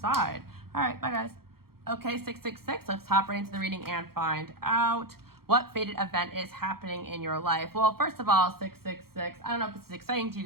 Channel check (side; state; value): left; late; 0.94 ms